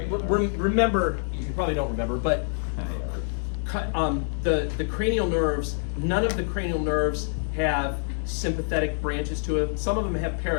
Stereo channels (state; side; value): silent; right; digital silence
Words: nerve? remember, you probably don't remember, but the cranial nerves, none of the cranial nerves have sympathetic branches to it. Some of them have